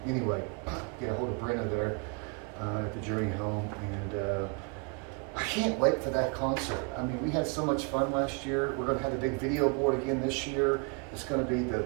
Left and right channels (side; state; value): left; quieter; 34.1 dB